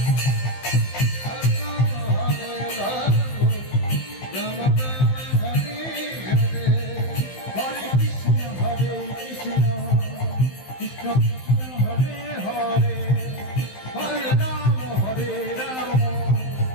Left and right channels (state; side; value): late; right; 15 ms